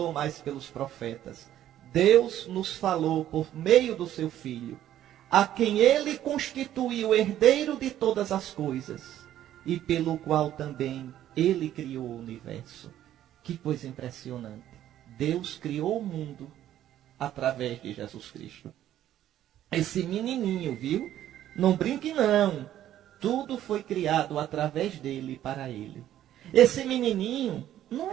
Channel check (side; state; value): left; quieter; 12.1 dB